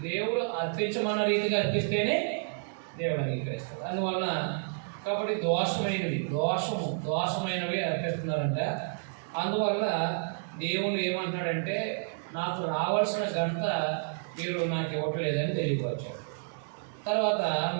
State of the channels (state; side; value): silent; left; 58 dB below the other